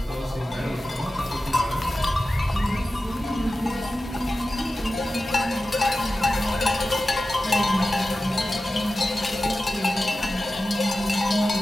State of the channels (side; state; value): both; normal; correlation 0.94